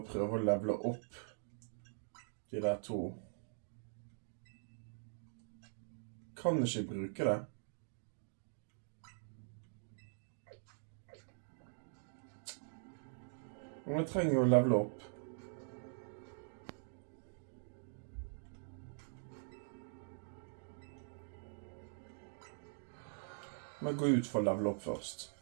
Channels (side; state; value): left; silent; digital silence